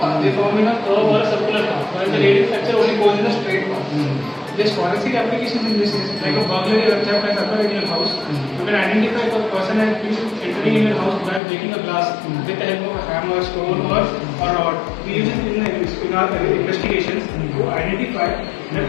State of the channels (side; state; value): right; drops out; at 11.4 s